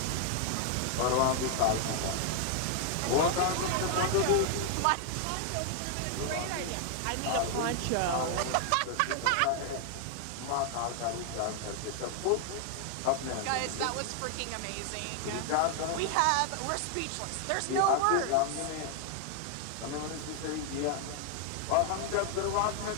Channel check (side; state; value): both; different; correlation 0.00